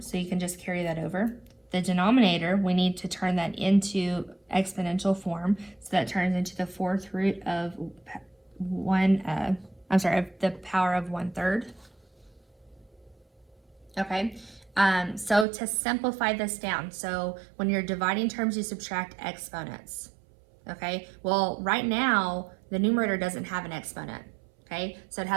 so you can just carry that over. The denominator, we need to turn that into exponential form, so that turns into the 4th root of the power of 1/3. Okay, so to simplify this down, so when you're dividing terms, you subtract exponents. Okay, well, right now, the numerator doesn't have an exponent. Okay, so it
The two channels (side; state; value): left; drops out; at 15.5 s